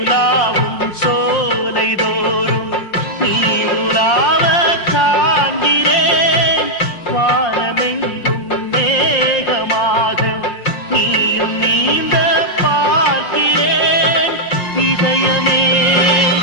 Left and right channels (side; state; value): right; late; 5.6 ms